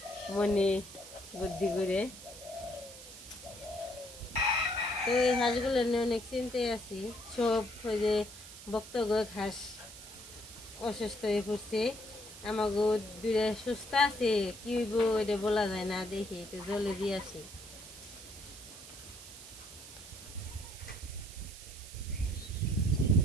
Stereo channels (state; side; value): noise; right; hiss, 15 dB below the sound